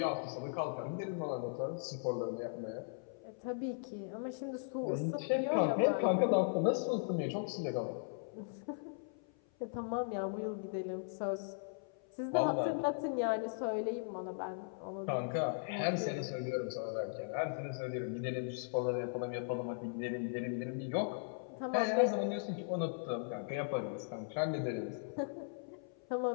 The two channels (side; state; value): right; silent; 52 dB below the other